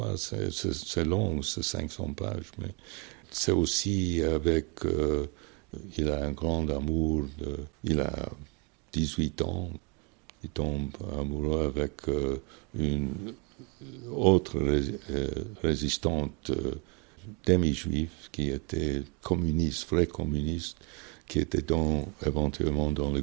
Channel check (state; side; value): quieter; left; 32.3 dB